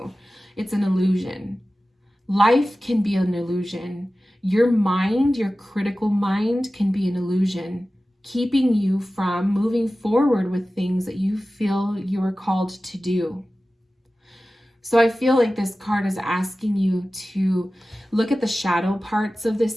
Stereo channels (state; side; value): normal; both; correlation 0.96